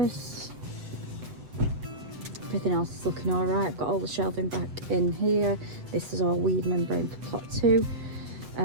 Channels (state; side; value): late; left; 7.8 ms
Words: Everything else is looking all right. I've got all the shelving back in here. This is all weed membrane for plot 2.